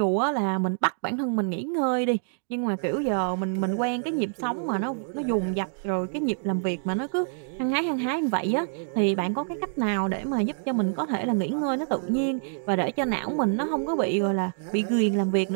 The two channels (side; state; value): left; silent; digital silence